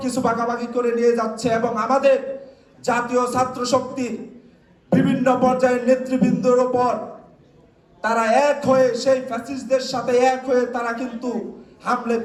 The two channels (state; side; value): identical; both; correlation 1.00